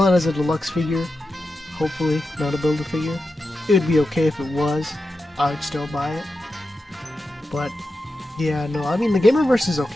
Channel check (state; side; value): normal; both; correlation 0.90